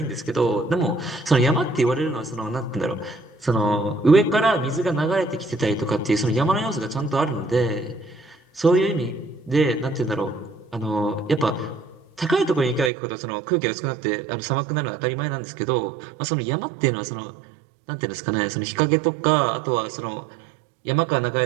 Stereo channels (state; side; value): drops out; left; at 12.9 s